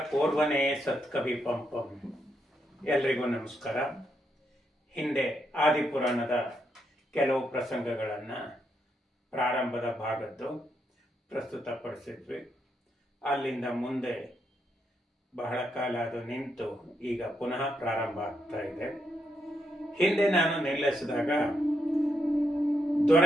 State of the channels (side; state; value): both; normal; correlation 0.80